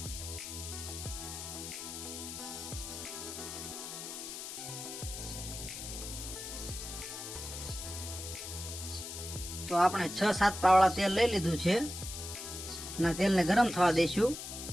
તો આપણે 6-7 પાવડા તેલ લઈ લીધું છે અને તેલને ગરમ થવા દઈશું।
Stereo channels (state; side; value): noise; left; hiss, 8 dB below the sound